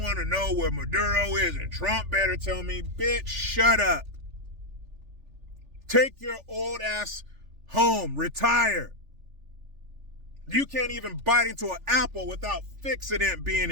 to know where Maduro is, and Trump better tell me. Bitch, shut up. Take your old ass home, retire. You can't even bite into an apple without fixident being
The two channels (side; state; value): left; late; 3.4 ms